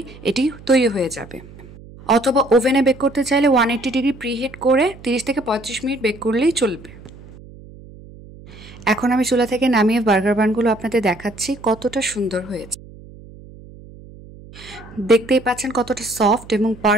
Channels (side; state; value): right; noise; hum, 19 dB below the sound